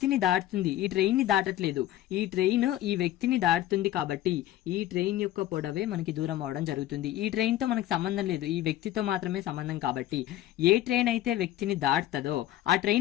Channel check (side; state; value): right; quieter; 13.8 dB